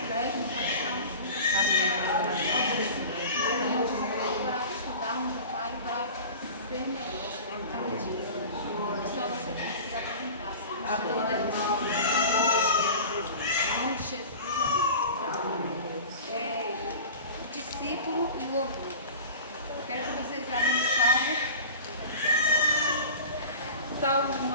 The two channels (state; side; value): inverted; both; correlation -0.36